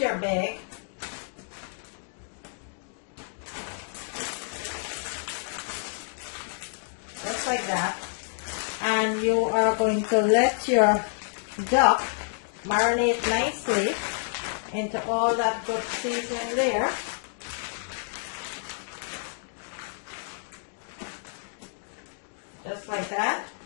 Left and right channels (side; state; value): right; silent; digital silence